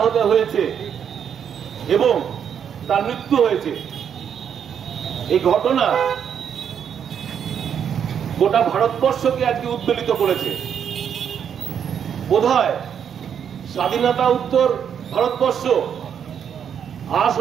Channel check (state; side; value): quieter; left; 8.2 dB